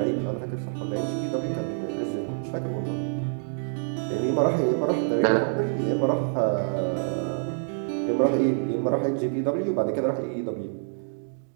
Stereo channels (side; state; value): left; silent; digital silence